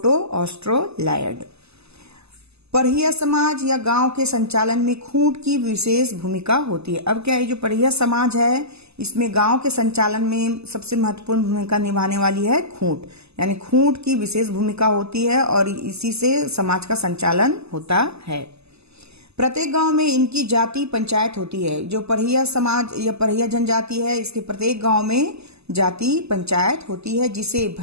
ऑस्ट्रोलायड। परहिया समाज या गांव के संचालन में खूंट की विशेष भूमिका होती है। अब क्या है, जो परहिया समाज है इसमें गांव के संचालन में सबसे महत्वपूर्ण भूमिका निभाने वाली है खूंट, यानी खूंट की विशेष भूमिका होती है और इसी से समाज का संचालन होता है। प्रत्येक गांव में इनकी जाति पंचायत होती है। जो परहिया समाज या परहिया जनजाति है इसके प्रत्येक गांव में जाति पंचायत होती है जिसे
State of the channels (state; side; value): late; left; 0.79 ms